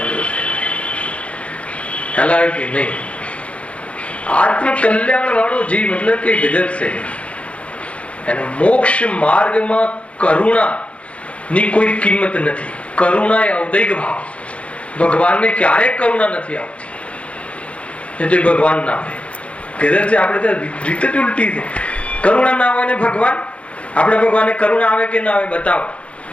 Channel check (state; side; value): late; right; 0.062 ms